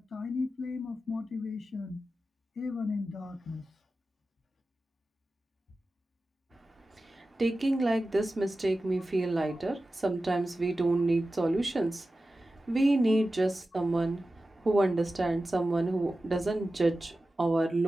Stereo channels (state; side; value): normal; both; correlation 0.94